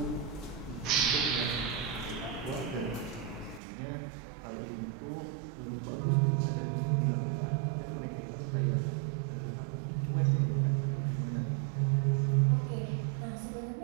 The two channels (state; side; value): drops out; left; at 3.6 s